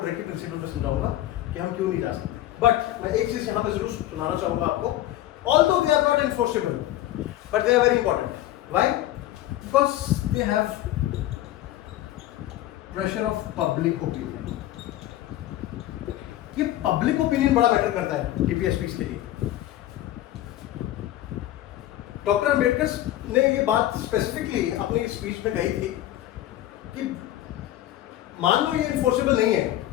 प्रिंसिपल में समझाऊंगा कि हम क्यों नहीं जा सकते। बट मैं एक चीज यहाँ पे जरूर सुनाना चाहूंगा आपको, although they are not enforceable but they are very important. Why? Because they have pressure of public opinion. ये पब्लिक ओपिनियन बड़ा मैटर करता है DPSPs के लिए। डॉक्टर अंबेडकर ने ये बात स्पेसिफिकली अपनी स्पीच में कही थी कि मान लो ये इन्फोर्सेबल नहीं है,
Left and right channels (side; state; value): right; quieter; 14.1 dB